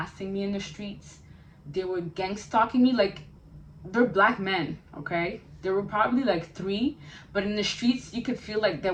me in the streets. They were gang stalking me. Like, they're black men, okay? There were probably like three, but in the streets you could feel like there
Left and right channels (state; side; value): identical; both; correlation 1.00